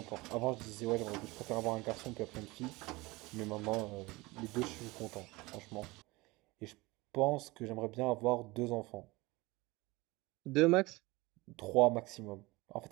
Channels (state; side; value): quieter; left; 22.4 dB